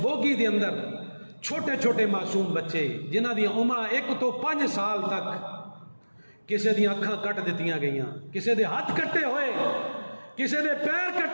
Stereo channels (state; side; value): inverted; both; correlation -1.00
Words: بوگی دے اندر چھوٹے چھوٹے معصوم بچے جنہ دی عمر 1 تو 5 سال تک، کسے دی اکھاں کٹ دتیاں گئیاں، کسے دے ہاتھ کٹے ہوئے، کسے دے پیر